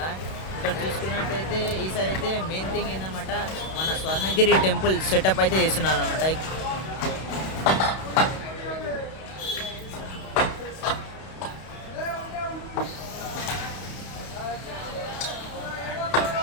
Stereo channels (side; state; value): right; late; 31 ms